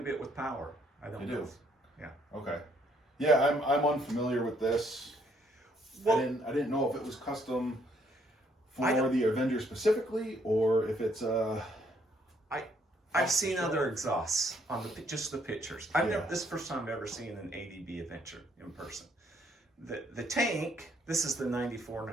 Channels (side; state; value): both; normal; correlation 0.68